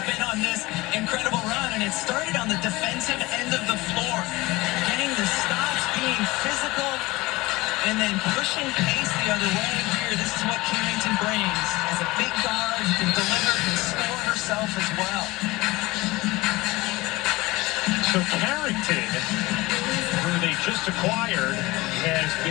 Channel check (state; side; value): quieter; right; 21.0 dB